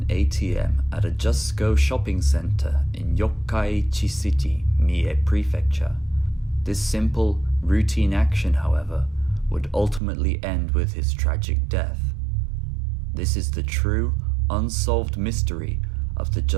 ATM at a Just Go shopping center in Yokkaichi City, Mie Prefecture. This simple, routine action, however, would ultimately end with his tragic death. This is the true, unsolved mystery of the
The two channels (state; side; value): drops out; left; at 10.0 s